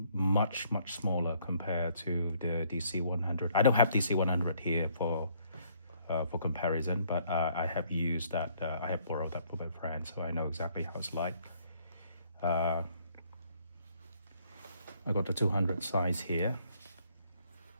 much smaller compared to the DC 100. I don't have DC 100 here for comparison, but I have used that. I have borrowed that from my friend, so I know exactly how it's like. I got the 200 size here.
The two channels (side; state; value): both; inverted; correlation -0.65